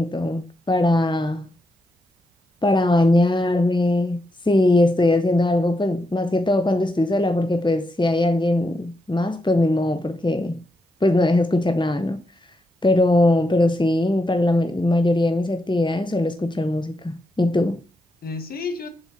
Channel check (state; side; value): normal; both; correlation 0.83